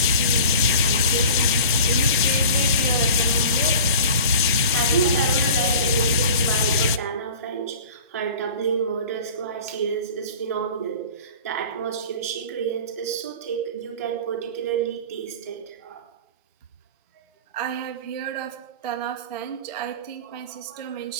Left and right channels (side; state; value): both; inverted; correlation -0.41